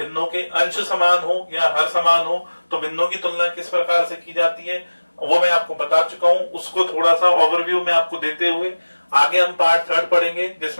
के अंश समान हो या हर समान हो, तो भिन्नों की तुलना किस प्रकार से की जाती है वो मैं आपको बता चुका हूं। उसको थोड़ा सा ओवरव्यू में आपको देते हुए आगे हम पार्ट थर्ड पढ़ेंगे,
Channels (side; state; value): both; inverted; correlation -1.00